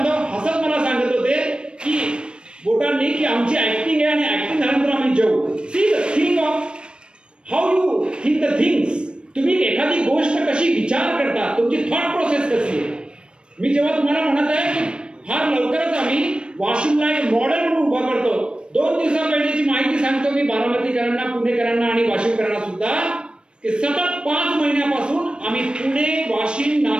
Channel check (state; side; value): late; left; 0.054 ms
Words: हसत मला सांगत होते की बोटांनी की आमची ऍक्टिंग आहे आणि ऍक्टिंग झाल्यानंतर आम्ही जेवू. See the thing of how you think the things. तुम्ही एखादी गोष्ट कशी विचार करता, तुमची थॉट प्रोसेस कशी आहे. मी जेव्हा तुम्हाला म्हणत आहे की फार लवकरच आम्ही वाशिमला एक मॉडेल म्हणून उभा करतो. 2 दिवसापहिलेची माहिती सांगतो मी बारामतीकरांना, पुणेकरांना आणि वाशिमकरांना सुद्धा की सतत 5 महिन्यापासून आम्ही पुणे, वाशिम,